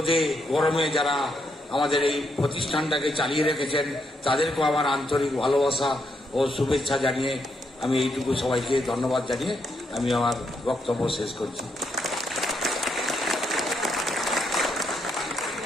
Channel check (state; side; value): normal; both; correlation 0.78